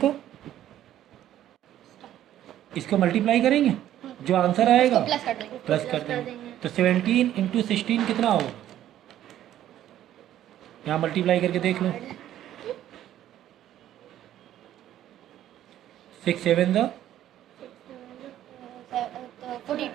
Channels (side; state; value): left; quieter; 12.2 dB